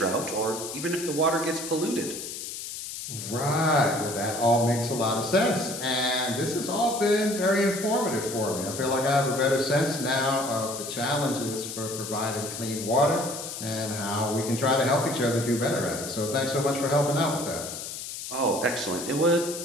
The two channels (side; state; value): left; noise; hiss, 8 dB below the sound